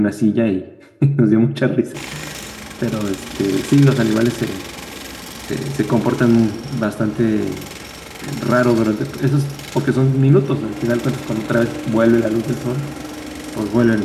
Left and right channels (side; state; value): both; identical; correlation 1.00